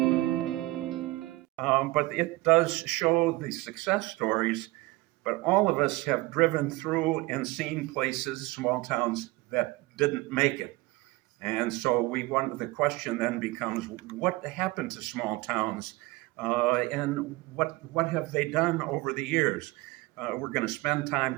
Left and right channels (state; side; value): quieter; left; 21.0 dB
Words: But it does show the success stories, but all of us have driven through and seen places, small towns, that didn't make it. And so the question then becomes, what happened to small towns? And what have they done over the years? We're going to spend